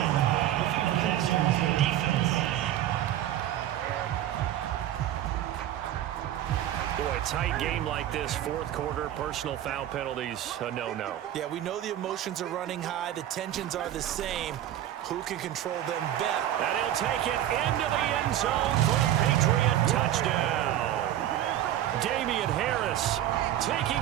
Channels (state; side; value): quieter; left; 12.2 dB